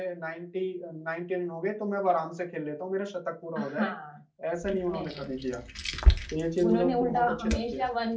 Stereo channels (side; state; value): both; identical; correlation 1.00